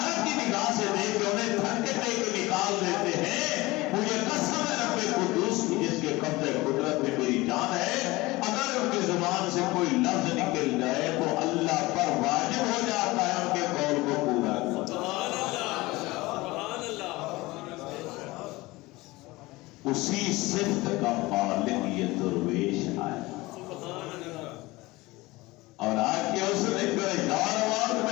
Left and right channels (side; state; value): right; quieter; 20.8 dB